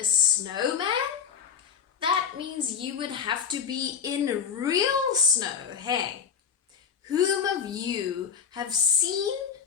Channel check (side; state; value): right; quieter; 6.9 dB